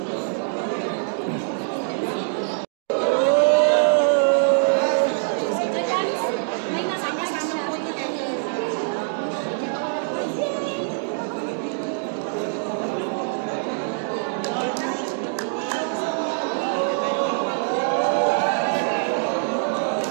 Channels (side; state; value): left; silent; digital silence